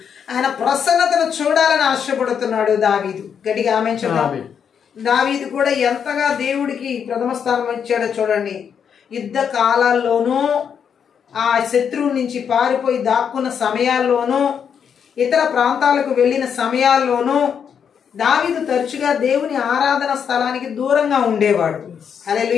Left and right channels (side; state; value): right; quieter; 7.5 dB